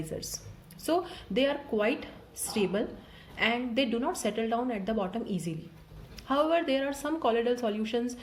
So they are quite stable and they do not settle down at the bottom easily. However, there are some colloidal solutions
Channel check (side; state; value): both; identical; correlation 1.00